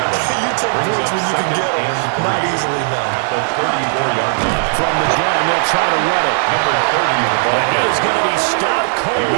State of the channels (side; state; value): left; silent; digital silence